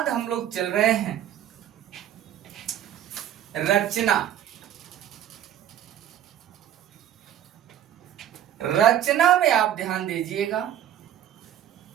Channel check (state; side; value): quieter; left; 10.8 dB